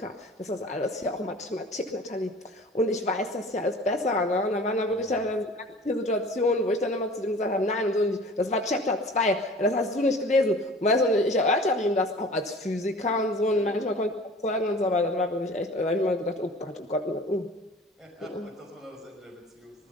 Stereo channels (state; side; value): normal; both; correlation 0.44